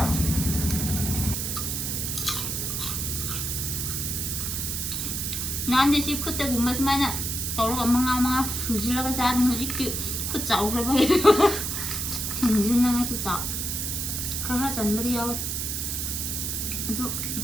ꯅꯍꯥꯟꯗꯤ ꯁꯤ ꯈꯨꯠꯇꯒꯨꯝꯕ ꯁꯨꯃꯥꯏꯅ ꯇꯧꯔꯒ ꯃꯉꯥ ꯁꯨꯖꯤꯜꯂꯒ ꯆꯥꯕꯅꯤ ꯍꯧꯖꯤꯛꯇꯤ ꯈꯨꯠ ꯆꯥꯎꯈ꯭ꯔꯕꯒꯤ ꯊꯤꯡꯖꯤꯟꯅꯉꯥꯏꯁꯨ ꯈꯔ ꯆꯟꯕꯗꯤ ꯌꯥꯎꯋꯦ ꯑꯗꯨ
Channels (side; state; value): right; noise; hiss, 2 dB below the sound